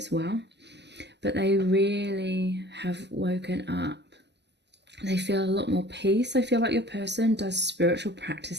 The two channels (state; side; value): late; left; 0.50 ms